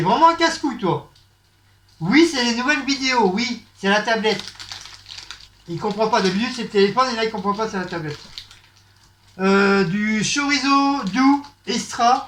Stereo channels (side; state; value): both; identical; correlation 1.00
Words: vraiment un casse-couille, toi. Oui, c'est les nouvelles vidéos, oui, c'est la tablette. Il comprend pas. D'habitude, c'est le téléphone et là, il comprend pas, c'est la tablette. Du chorizo doux